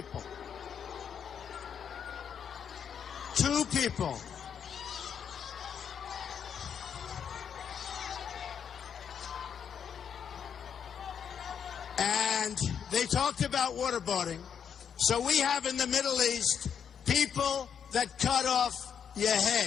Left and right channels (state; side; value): quieter; right; 7.8 dB